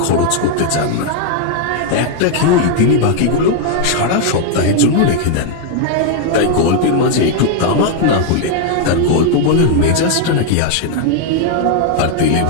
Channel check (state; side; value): different; both; correlation 0.00